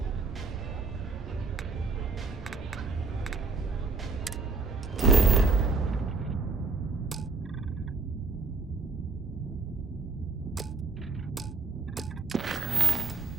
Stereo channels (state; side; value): quieter; left; 4.1 dB